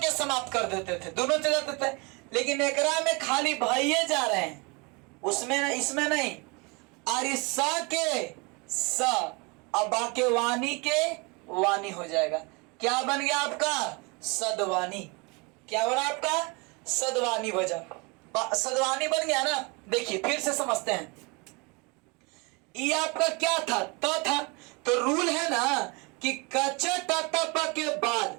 समाप्त कर देते थे, दोनों चले जाते थे, लेकिन एकरा में खाली भैया जा रहे हैं, उसमें इसमें नहीं। और इस स के स, अब बाके वाणी के वाणी हो जाएगा। क्या बन गया आपका, सदवानी। क्या बना आपका, सदवानी बजा, सदवानी बन गया ना। देखिए फिर से समझते हैं, ये आपका क्या था, त था, तो रूल है ना कि कच ट के बाद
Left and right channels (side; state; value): left; quieter; 28.9 dB